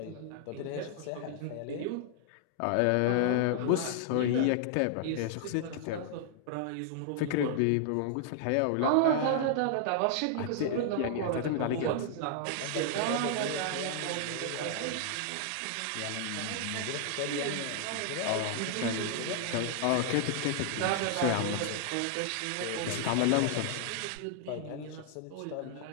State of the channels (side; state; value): both; different; correlation -0.01